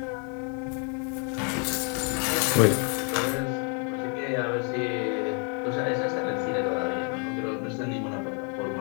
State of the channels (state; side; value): quieter; right; 39.0 dB